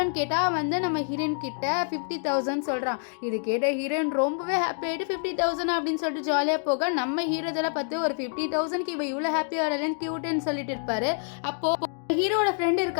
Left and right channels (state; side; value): silent; right; 60 dB below the other